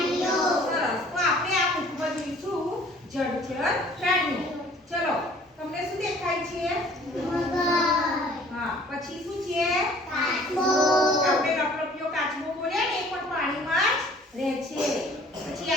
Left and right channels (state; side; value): normal; both; correlation 0.53